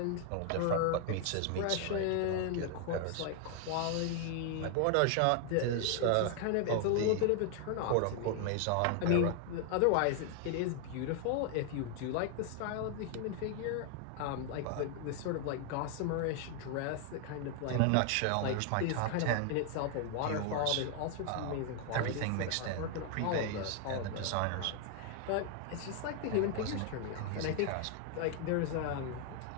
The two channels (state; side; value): different; both; correlation 0.00